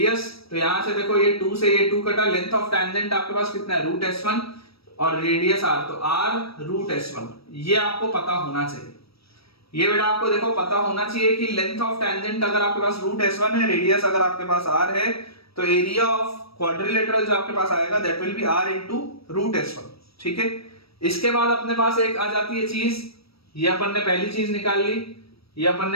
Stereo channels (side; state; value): right; late; 0.76 ms